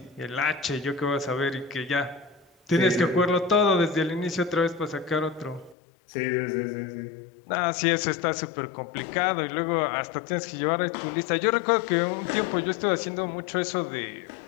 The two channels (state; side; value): drops out; right; at 5.8 s